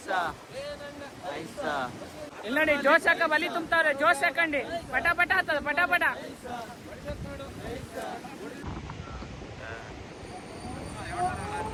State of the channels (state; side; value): identical; both; correlation 1.00